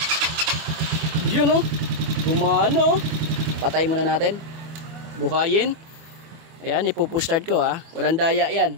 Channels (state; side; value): late; left; 24 ms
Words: Yun, oh. Gumano. Patay muna natin. Buhayin. Ayan, ipupush start ko, ha. Walang daya yan.